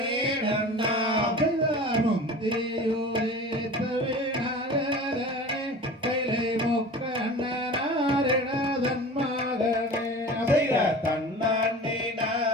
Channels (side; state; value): both; normal; correlation 0.38